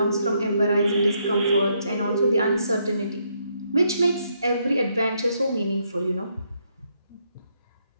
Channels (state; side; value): inverted; both; correlation -0.75